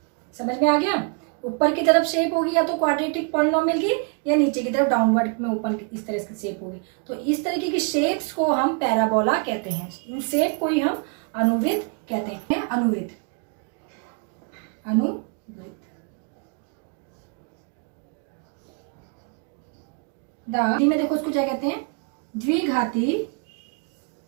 समझ में आ गया? ऊपर की तरफ शेप होगी या तो क्वाड्रेटिक पॉलिनोमियल की, या नीचे की तरफ डाउनवर्ड में ओपन इस तरह की शेप होगी। तो इस तरीके की शेप्स को हम पैराबोला कहते हैं। इन शेप को ही हम अनुवृत्त कहते हैं। अनुवृत्त, हिंदी में देखो उसको क्या कहते हैं, द्विघाती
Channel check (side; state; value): left; quieter; 38.4 dB